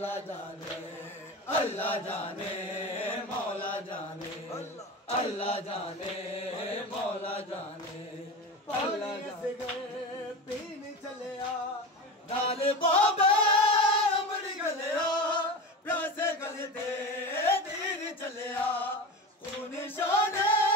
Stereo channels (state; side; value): normal; both; correlation 0.27